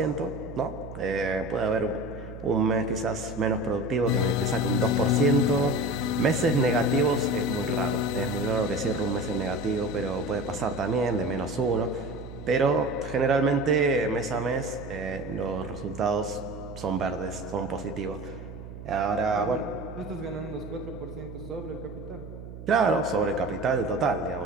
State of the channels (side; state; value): right; noise; hum, 12 dB below the sound